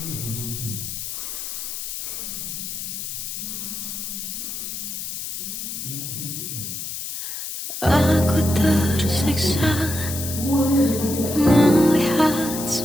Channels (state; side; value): noise; left; hiss, 6 dB below the sound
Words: Aku tersiksa melihat